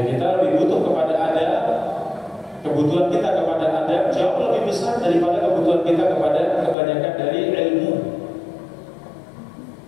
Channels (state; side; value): drops out; right; at 6.8 s